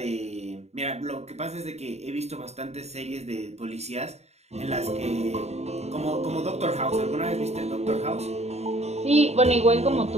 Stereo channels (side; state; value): left; late; 0.31 ms